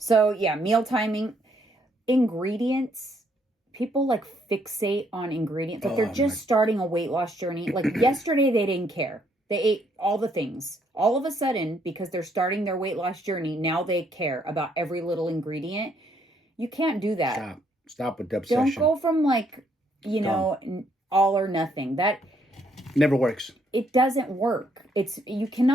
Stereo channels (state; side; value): normal; both; correlation 0.70